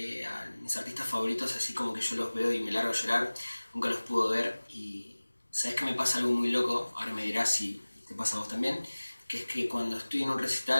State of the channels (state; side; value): inverted; both; correlation -1.00